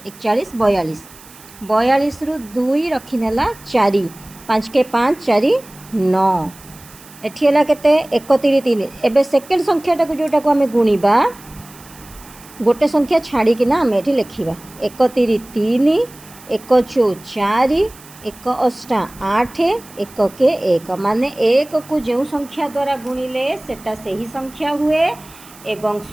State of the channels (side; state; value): right; noise; hiss, 22 dB below the sound